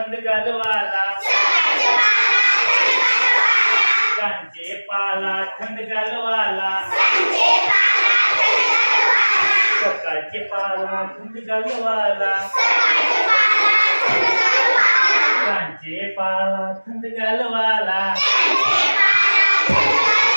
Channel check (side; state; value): both; inverted; correlation -1.00